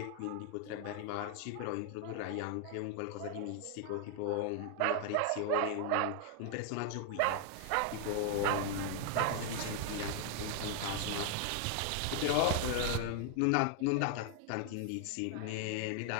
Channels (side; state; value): both; different; correlation 0.00